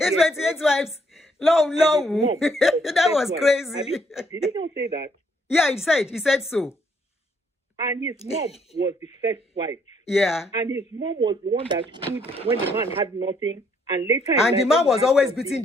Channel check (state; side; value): normal; both; correlation 0.69